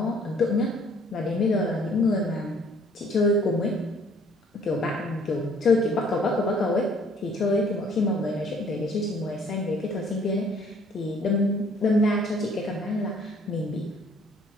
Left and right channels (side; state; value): both; normal; correlation 0.59